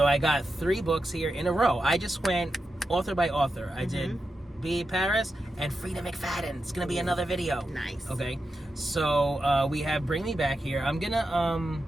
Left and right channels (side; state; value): both; normal; correlation 0.89